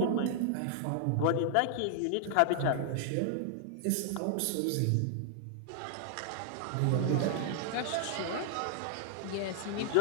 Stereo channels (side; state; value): both; different; correlation 0.00